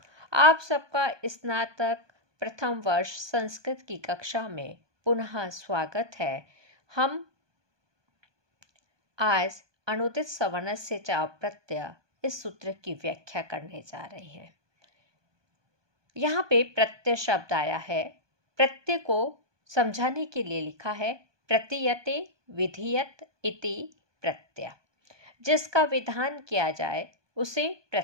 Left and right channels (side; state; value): left; late; 1.2 ms